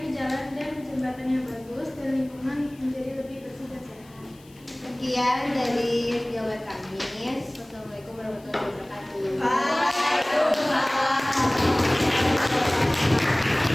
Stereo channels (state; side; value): noise; left; hiss, 27 dB below the sound